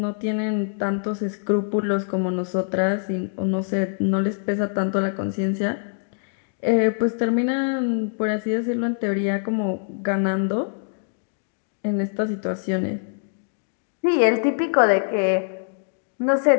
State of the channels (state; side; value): silent; right; digital silence